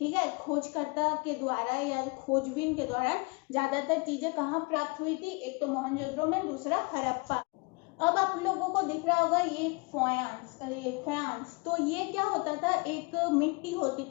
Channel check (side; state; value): right; quieter; 29.3 dB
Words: है, खोजकर्ता के द्वारा या खोजबीन के द्वारा ज्यादातर चीजें कहाँ प्राप्त हुई थी, एक तो मोहनजोदड़ो में, दूसरा हड़प्पा। अब आप लोगों को दिख रहा होगा ये फयांस, तो ये क्या होता था, एक मिट्टी होती